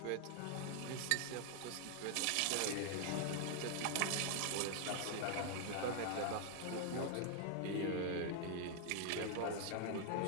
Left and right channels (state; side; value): different; both; correlation 0.00